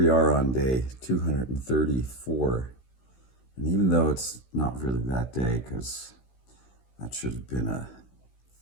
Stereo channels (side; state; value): right; late; 16 ms